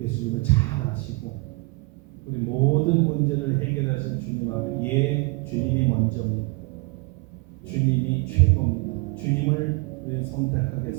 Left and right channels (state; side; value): quieter; left; 26.8 dB